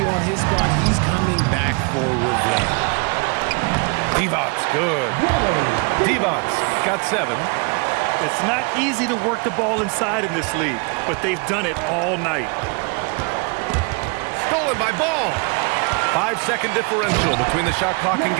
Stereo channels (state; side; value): quieter; left; 32.5 dB